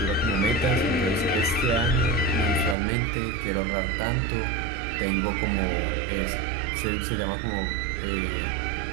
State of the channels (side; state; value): left; drops out; at 2.8 s